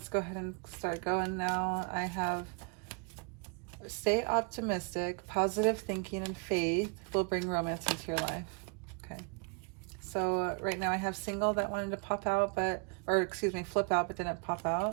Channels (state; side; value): quieter; left; 36.9 dB